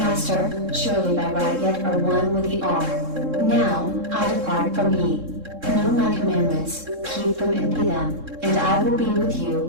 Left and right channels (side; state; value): left; late; 3.7 ms